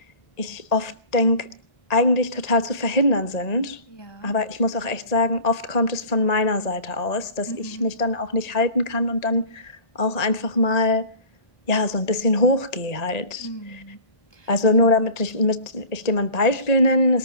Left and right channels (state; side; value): late; right; 1.8 ms